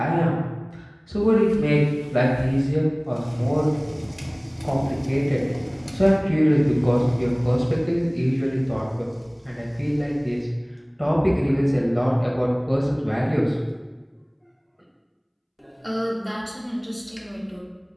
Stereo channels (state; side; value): identical; both; correlation 1.00